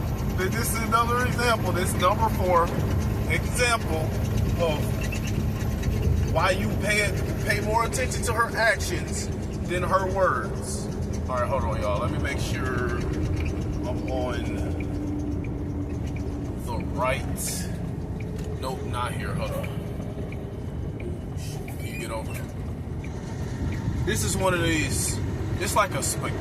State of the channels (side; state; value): both; identical; correlation 1.00